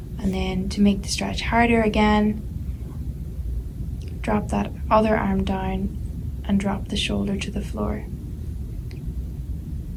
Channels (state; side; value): identical; both; correlation 1.00